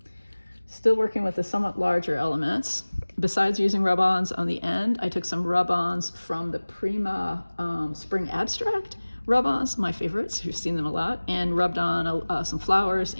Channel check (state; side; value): inverted; both; correlation -1.00